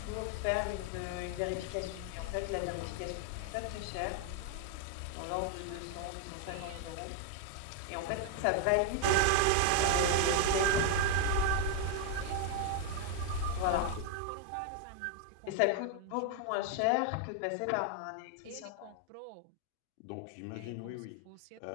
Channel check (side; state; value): both; different; correlation 0.00